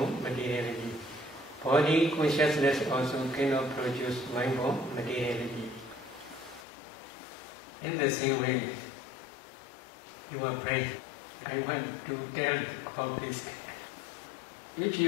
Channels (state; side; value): drops out; right; at 6.7 s